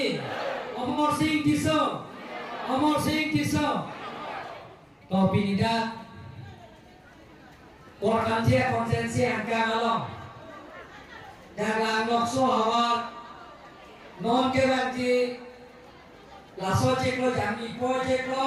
অমর সিং কিশো অমর সিং কিশো topi nida korkan dia konsensi angka ngalong dalam lokso awal non kebanti laso ceklo jami po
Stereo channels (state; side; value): identical; both; correlation 1.00